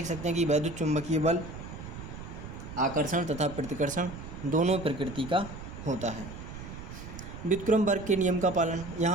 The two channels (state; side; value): noise; right; rumble, 11 dB below the sound